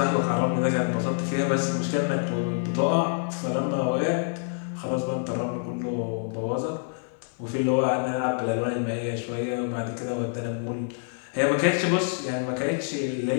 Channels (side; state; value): right; silent; digital silence